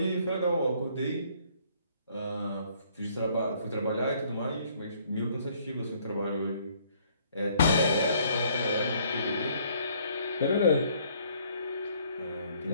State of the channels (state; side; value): inverted; both; correlation -0.63